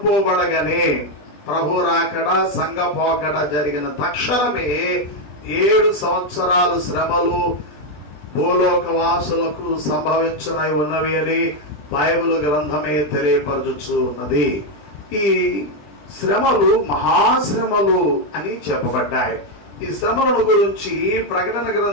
ప్రభు రాకడ, సంఘ పోకడ జరిగిన తక్షణమే 7 సంవత్సరాలు శ్రమలు భూలోక వాసులకు సంభవించనై ఉన్నవి అని బైబిల్ గ్రంథమే తెలియపరచుచు ఉన్నది. ఈ శ్రమలు మహాశ్రమలు అని చెప్పబడ్డాయి. ఈ శ్రమలను గురించి ప్రకటన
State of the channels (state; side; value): late; right; 20 ms